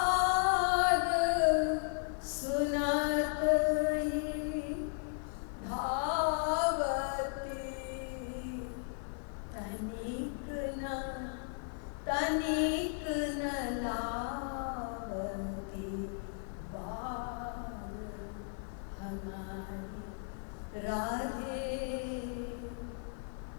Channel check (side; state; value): right; silent; 54 dB below the other